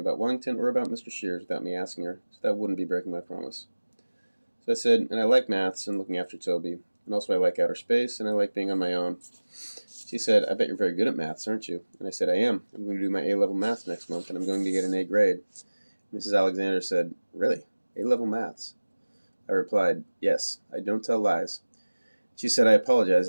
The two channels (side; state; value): both; inverted; correlation -1.00